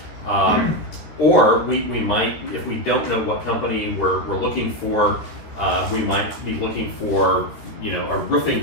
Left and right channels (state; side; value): late; right; 14 ms